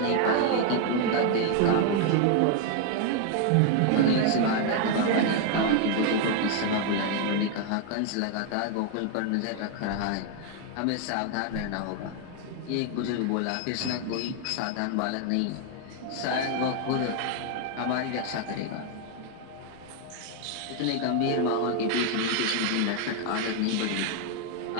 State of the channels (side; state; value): both; different; correlation 0.00